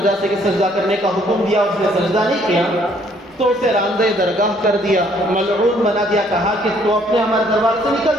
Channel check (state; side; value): normal; both; correlation 0.64